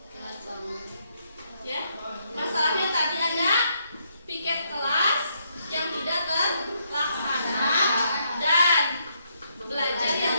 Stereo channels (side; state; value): both; inverted; correlation -0.75